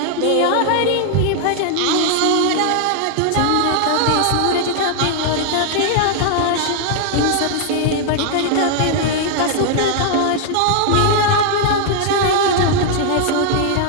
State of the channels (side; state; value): both; different; correlation 0.00